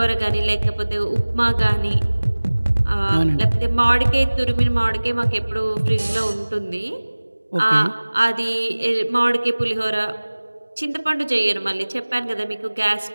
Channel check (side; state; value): both; inverted; correlation -1.00